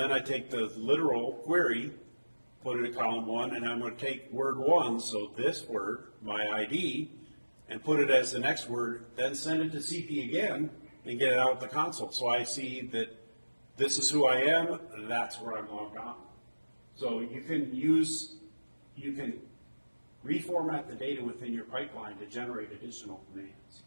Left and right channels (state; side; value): inverted; both; correlation -1.00